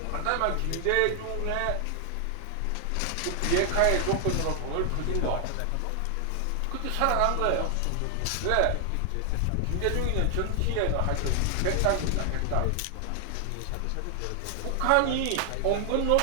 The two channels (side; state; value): both; different; correlation 0.00